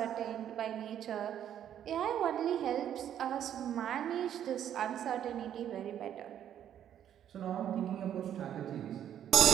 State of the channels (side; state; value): left; quieter; 10.2 dB